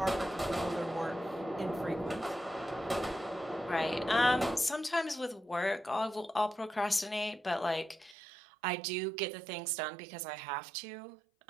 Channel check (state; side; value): drops out; left; at 8.2 s